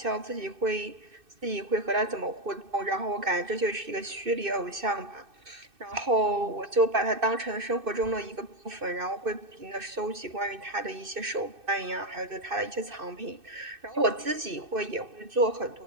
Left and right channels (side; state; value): left; late; 2.6 ms